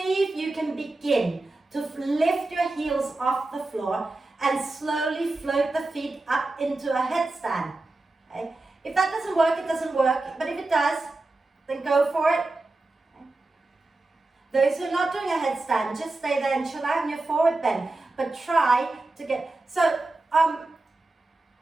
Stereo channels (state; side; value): quieter; left; 3.1 dB